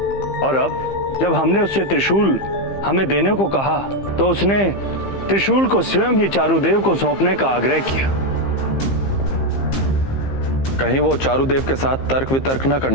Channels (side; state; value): right; late; 15 ms